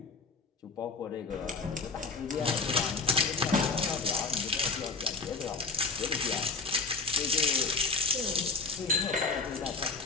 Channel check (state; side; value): quieter; right; 4.4 dB